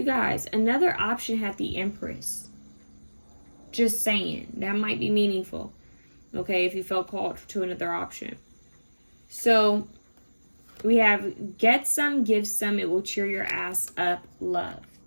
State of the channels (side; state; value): both; inverted; correlation -1.00